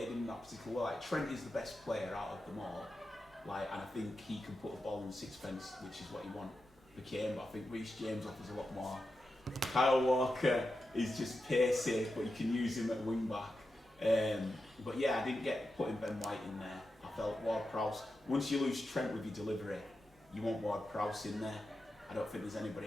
in that particular way. Like, Trent is the best player out of them all, and I think he can put the ball in the sixpence, which is what he wants for Kane. But I think Reece James offers a lot more. Kyle Walker is just pacey, but you can use him at wing back. But yeah, I didn't get putting Ben White in there. I felt Ward-Prowse. Once you lose Trent with your delivery, you want Ward-Prowse in there. I don't think there's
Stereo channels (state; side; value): normal; both; correlation 0.89